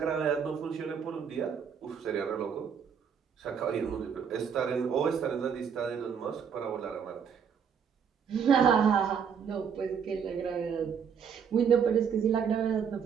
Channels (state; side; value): quieter; left; 7.2 dB